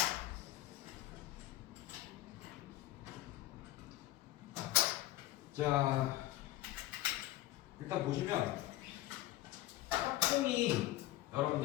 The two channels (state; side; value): quieter; right; 15.9 dB